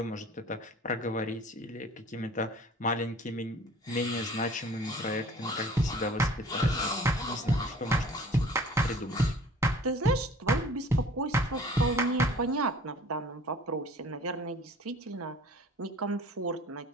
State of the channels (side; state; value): both; normal; correlation 0.48